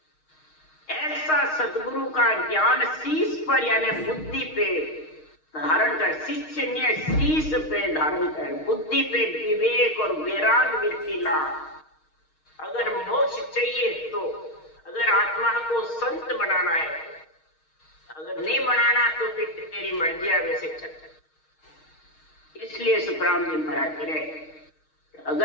ऐसा सतगुरु का ज्ञान शीस पर यानी बुद्धि पे धारण कर, शिष्य ने शीस पे धारण कर, बुद्धि पे विवेक और वैराग वृत्ति ला। अगर मोक्ष चाहिए तो, अगर आत्मा को संत बनाना है, अगर नहीं बनाना तो फिर तेरी मर्जी वैसे चल। इसलिए सुखराम जी महाराज करे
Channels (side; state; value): right; late; 6.4 ms